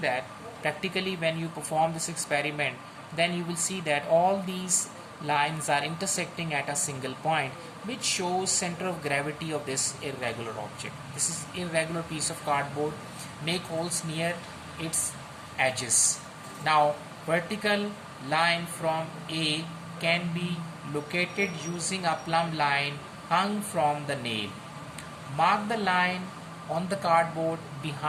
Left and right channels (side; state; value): both; identical; correlation 1.00